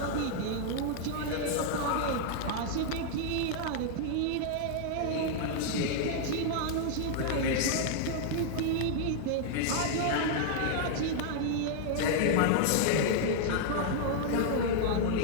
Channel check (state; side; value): different; both; correlation 0.00